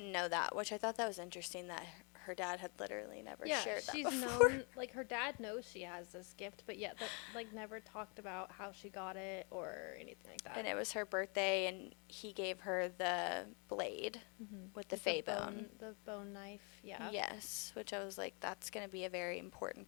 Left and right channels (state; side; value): quieter; right; 35.3 dB